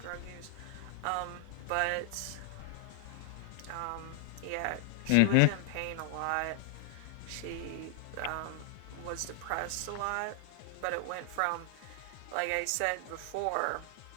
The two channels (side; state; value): both; different; correlation 0.00